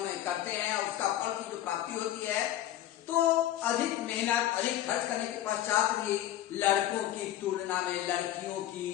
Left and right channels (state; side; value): quieter; right; 13.0 dB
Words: करते हैं उसका फल की जो प्राप्ति होती है, तो अधिक मेहनत अधिक खर्च करने के पश्चात भी लड़कों की तुलना में लड़कियों की